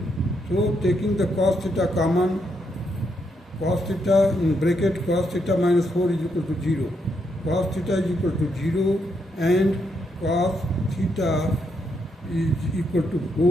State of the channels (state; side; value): normal; both; correlation 0.78